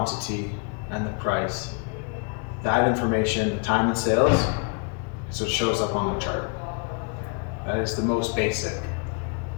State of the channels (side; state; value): right; quieter; 37.3 dB